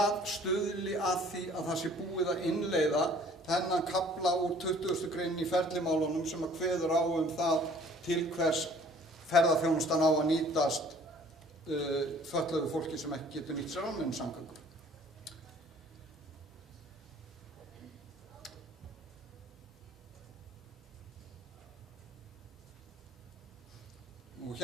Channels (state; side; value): normal; both; correlation 0.54